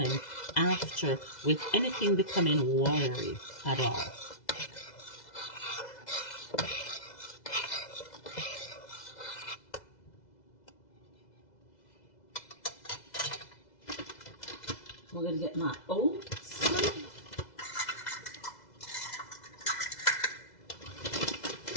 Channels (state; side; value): late; right; 2.0 ms